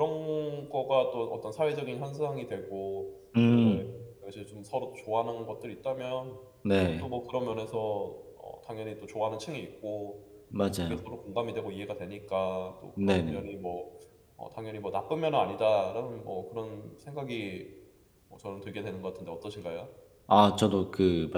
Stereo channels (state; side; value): identical; both; correlation 1.00